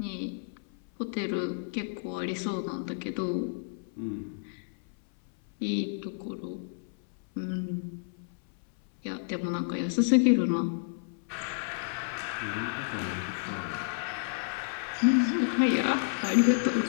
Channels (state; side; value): silent; right; 57 dB below the other